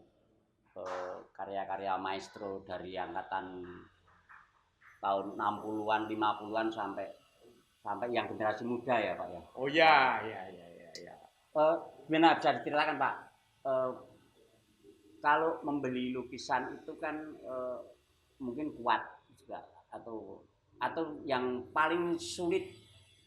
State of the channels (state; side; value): identical; both; correlation 1.00